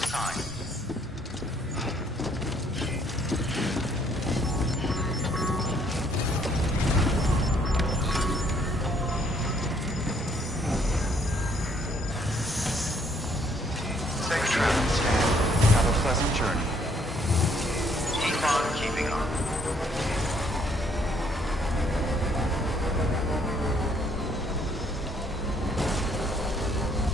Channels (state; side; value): normal; both; correlation 0.66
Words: Safe travel, Stan. Have a pleasant journey. Keep on keeping on.